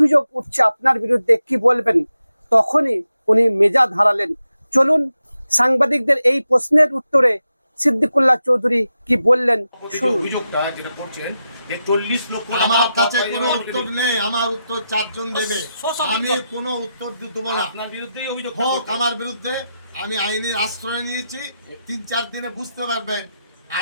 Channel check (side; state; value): both; inverted; correlation -0.88